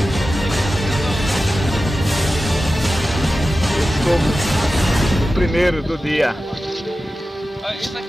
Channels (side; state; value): both; normal; correlation 0.94